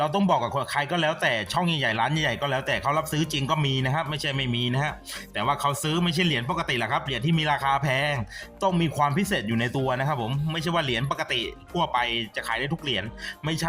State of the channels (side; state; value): both; identical; correlation 1.00